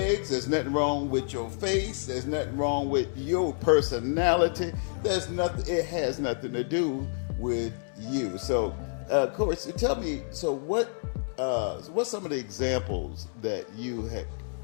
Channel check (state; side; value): silent; right; 59 dB below the other